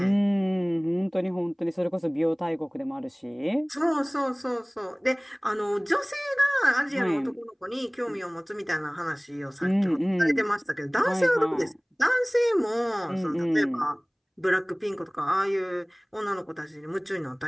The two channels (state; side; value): identical; both; correlation 1.00